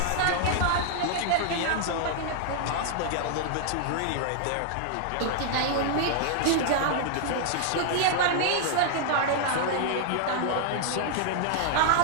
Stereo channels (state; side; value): different; both; correlation -0.01